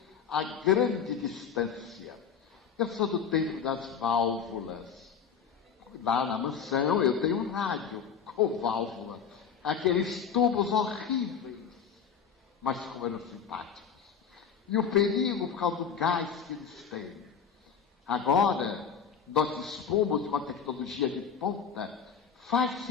a grande distância. Eu sou do tempo das válvulas. Lá na mansão eu tenho um rádio com válvula. Aqueles tubos horríveis, mas como eram simpáticos. E o perigo por causa do gás que eles têm. Agora, nós dispomos de uma tecnologia de ponta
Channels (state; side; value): quieter; right; 6.9 dB